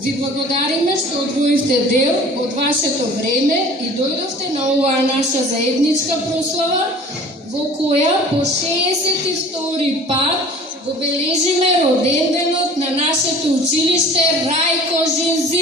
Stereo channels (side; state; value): both; normal; correlation 0.46